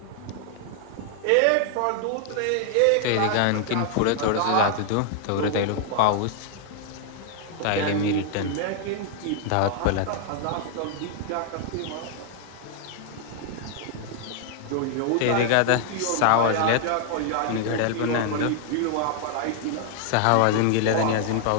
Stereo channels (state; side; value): different; both; correlation 0.00